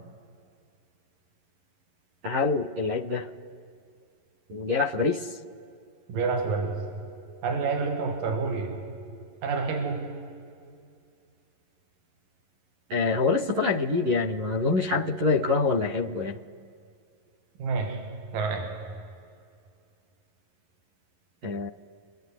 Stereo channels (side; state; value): left; late; 11 ms